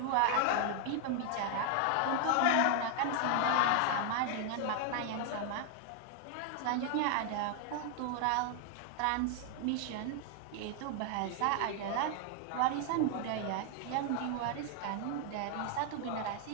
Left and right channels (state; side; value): different; both; correlation 0.00